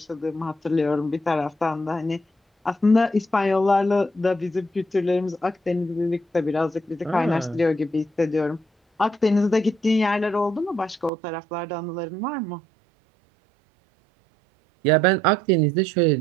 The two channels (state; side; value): drops out; left; at 11.1 s